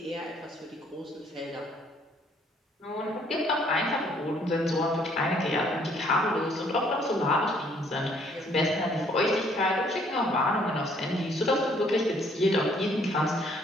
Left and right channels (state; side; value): normal; both; correlation 0.64